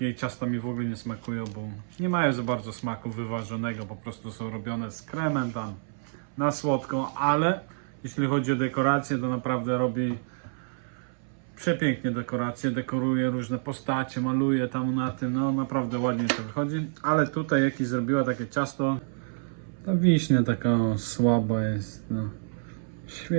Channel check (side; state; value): left; silent; 59 dB below the other